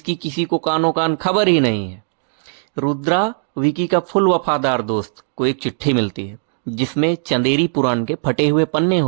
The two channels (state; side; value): silent; left; 61 dB below the other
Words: किसी को कानो कान खबर ही नहीं है। रुद्रा विकी का फुल वफादार दोस्त को एक चिट्ठी मिलती है जिसमें चंदेरी पुराण के फटे हुए पन्ने